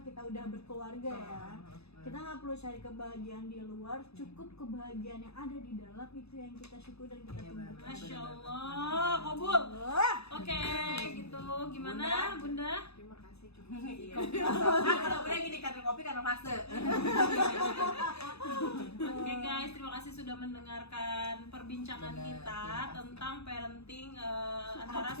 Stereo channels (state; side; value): late; right; 0.79 ms